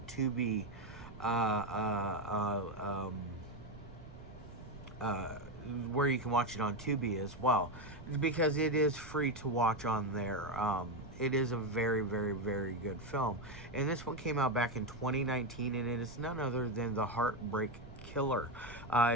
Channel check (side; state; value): right; noise; rumble, 15 dB below the sound